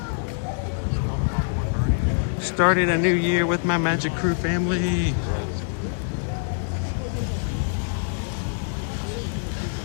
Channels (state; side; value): silent; right; 62 dB below the other